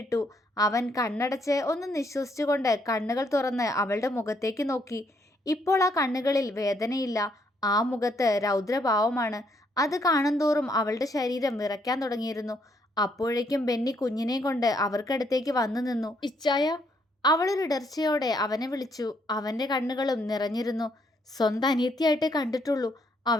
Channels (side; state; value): both; normal; correlation 0.72